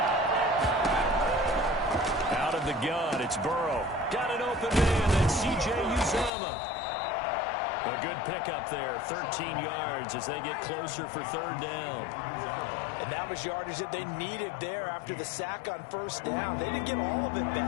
Out of the gun, it's Burrow. Got an open man, and C.J. Uzomah. A good pickup there, 13 yards as they get closer for 3rd down. And that was yardage that they needed there after the sack on 1st down. They didn't get all of it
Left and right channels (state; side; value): drops out; right; at 6.3 s